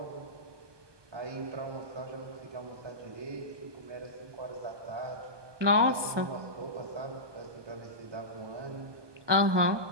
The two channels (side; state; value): left; late; 1.2 ms